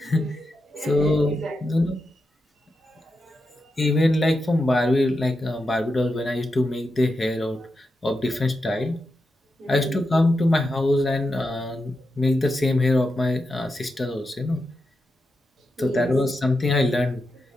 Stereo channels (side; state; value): both; normal; correlation 0.88